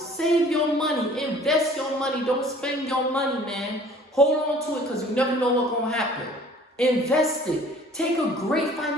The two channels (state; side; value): normal; both; correlation 0.51